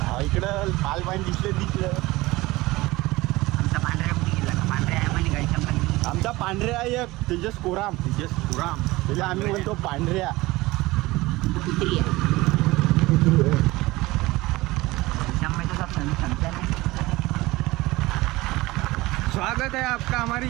इकडं पाल पाणी दिसलं. आमचा पांढऱ्या कुठे गेला का? पांढऱ्या आहे म्हणे गाडीच्या पण आमचा पांढऱ्या एक तेजस कोराम त्याला आम्ही म्हणतो पांढऱ्या. कुत्री आहे. में तो सब समझता नहीं. स्वागत है आपका हमारे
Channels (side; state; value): left; quieter; 20.1 dB